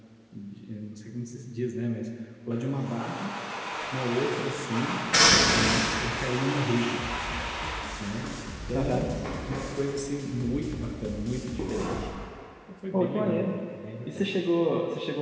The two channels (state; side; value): identical; both; correlation 1.00